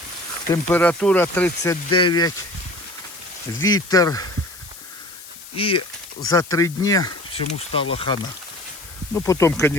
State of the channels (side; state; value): left; noise; hiss, 17 dB below the sound